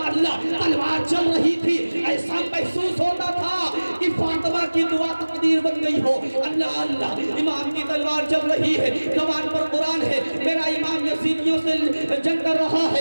अल्लाह तलवार चल रही थी, ऐसा महसूस होता था कि फातिमा की दुआ तकदीर बन गई हो। अल्लाह अल्लाह इमाम की तलवार चल रही है, ज़बान पर कुरान है, मेरा इमाम यजीदियों से जंग कर रहा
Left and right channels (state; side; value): inverted; both; correlation -1.00